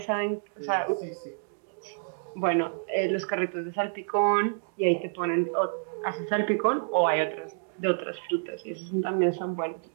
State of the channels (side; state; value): left; silent; digital silence